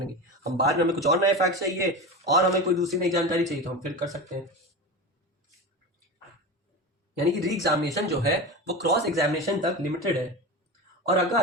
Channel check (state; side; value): normal; both; correlation 0.25